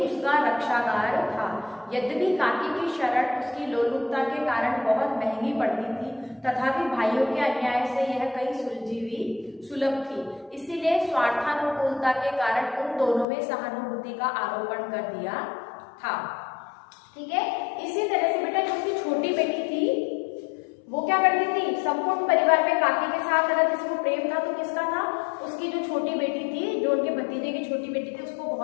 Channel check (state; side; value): drops out; right; at 13.2 s